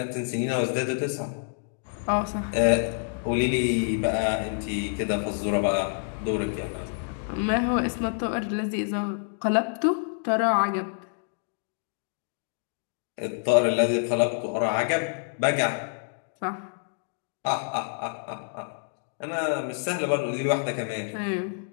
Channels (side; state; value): right; silent; digital silence